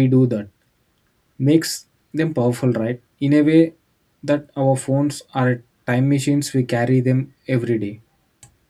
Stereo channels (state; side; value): identical; both; correlation 1.00